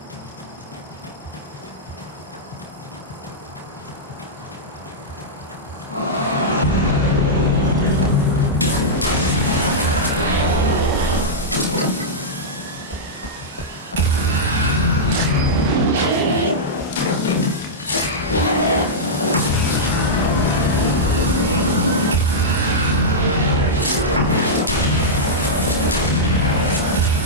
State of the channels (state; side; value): normal; both; correlation -0.09